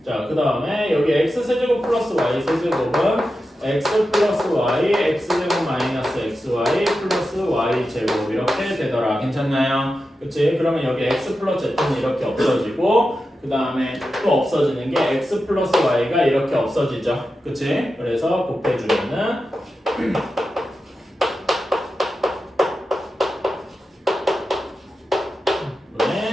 자, 그 다음에 여기 x 세제곱 플러스 y 세제곱은 x 플러스 y, x제곱 마이너스 xy 플러스 y 제곱 이렇게 되더라. 괜찮나요? 그치? 그러면 여기 x 플러스 z는 이렇게 없어지고 그 다음에 또 없어지는 게 x 플러스 y가 이렇게 없어지죠. 그치? 그래서 곱해주면은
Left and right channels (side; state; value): both; normal; correlation 0.91